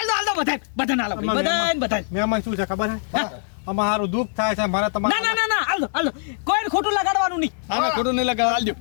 દો બધા મહેમાન શું છે ખબર હે અમારે સારું દુઃખ થાય છે મારે તમારે ના હાલ દો કોઈ ખોટું લગાડવાનું નહીં આમે ખોટું નહીં લગાવ હાલજો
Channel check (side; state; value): right; silent; digital silence